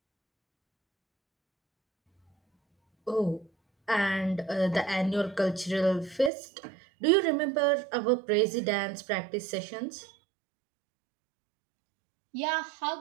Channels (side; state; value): left; drops out; at 6.3 s